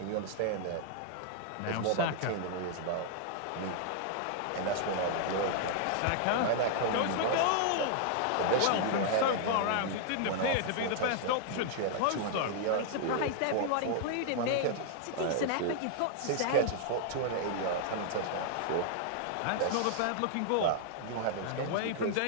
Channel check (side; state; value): both; different; correlation -0.01